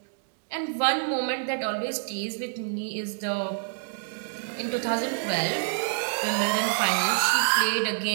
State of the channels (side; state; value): left; silent; digital silence